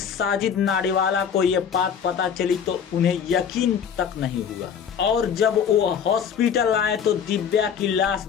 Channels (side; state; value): right; quieter; 7.5 dB